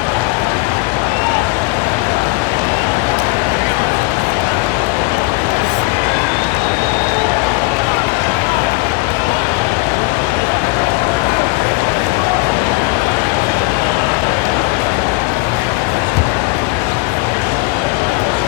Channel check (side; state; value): right; quieter; 24.2 dB